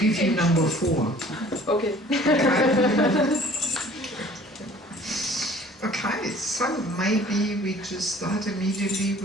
you number 4. Okay. Okay, so maybe we just start immediately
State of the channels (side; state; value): both; normal; correlation 0.51